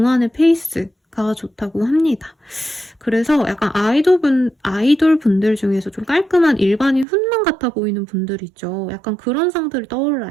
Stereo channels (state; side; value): drops out; left; at 7.1 s